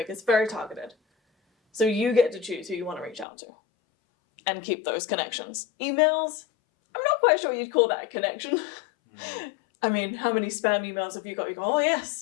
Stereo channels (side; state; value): right; drops out; at 3.2 s